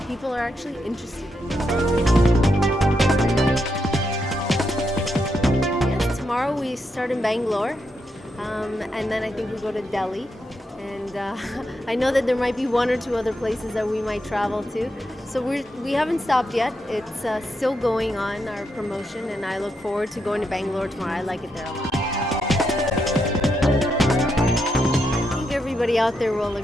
people are actually interested in you. Yes, tomorrow we start in Bangalore. And then I think we go to Delhi. And I know that there might be one or two other places that we might travel to. So we haven't stopped yet. It's still going on, our promotion, and I look forward to going to Bangalore tomorrow. I like it there a lot. I think everybody out there will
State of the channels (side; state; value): both; normal; correlation 0.82